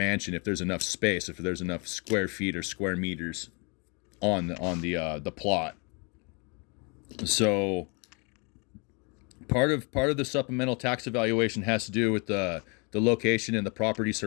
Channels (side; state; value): right; quieter; 32.7 dB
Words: if there's enough space, if there's enough square feet or square meters on the plot. So part of the supplemental tax evaluation has to do with the location and the property